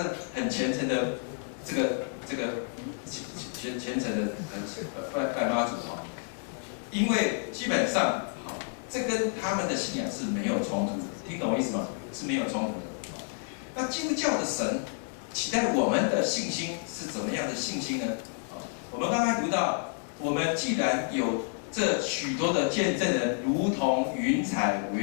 很虔诚的这个虔诚的拜妈祖因为基本上这跟他们的信仰是没有冲突的，听懂我意思吗？是没有冲突的。那基督教的神期待我们的信心是怎么样的信心呢？我们刚才读到，我们既然有这许多的见证人，如同云彩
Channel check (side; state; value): right; silent; 58 dB below the other